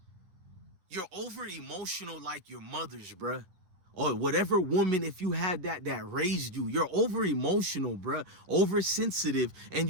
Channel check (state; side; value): late; left; 11 ms